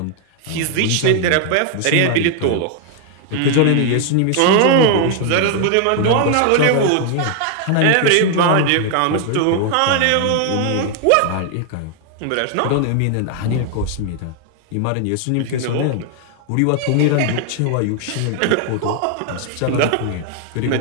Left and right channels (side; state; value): both; different; correlation 0.00